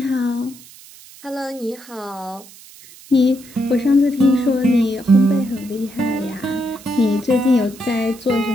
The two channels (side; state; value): right; noise; hiss, 21 dB below the sound